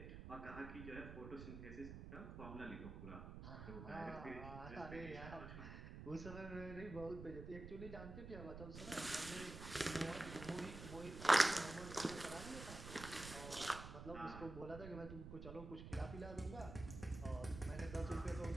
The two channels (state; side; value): noise; right; rumble, 9 dB below the sound